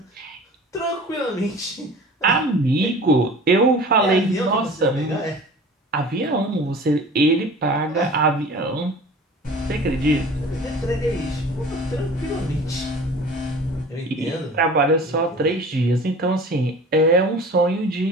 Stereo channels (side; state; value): both; normal; correlation 0.42